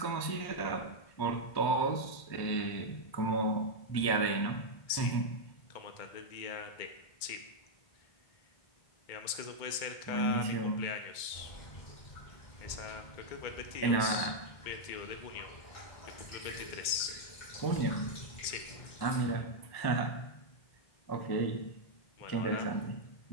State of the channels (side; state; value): right; late; 2.2 ms